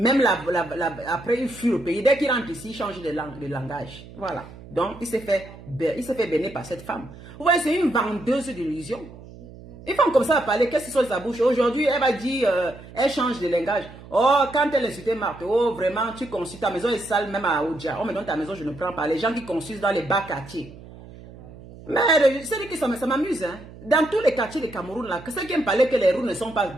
après, il fuit le pays. Dès qu'il rentre ici, il change de langage. Voilà. Donc, il s'est fait bénir par cette femme. Vous voyez, c'est une vendeuse d'illusions. Une femme comme ça va parler, qu'est-ce qui sort de sa bouche? Aujourd'hui, elle va dire, elle change de langage. Oh, quand elle insultait Marthe, oh, vraiment, tu consultes, ta maison est sale, même à Oudja. Oh, mais dans ta maison, je ne prends pas. Les gens qui consultent dans les bas quartiers. Mais c'est que ça m'amuse, hein. Dans tous les quartiers de Cameroun, là, ceux qui me parlaient que les routes ne sont pas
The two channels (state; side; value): noise; right; hum, 18 dB below the sound